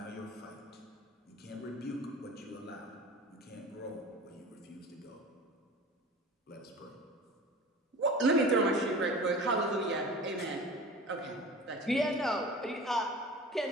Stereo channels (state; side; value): normal; both; correlation 0.38